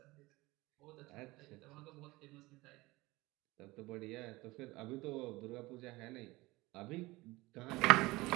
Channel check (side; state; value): left; quieter; 20.9 dB